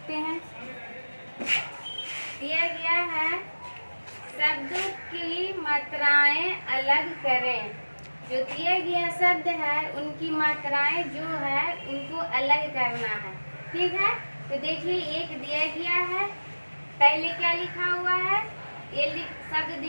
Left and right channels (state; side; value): inverted; both; correlation -1.00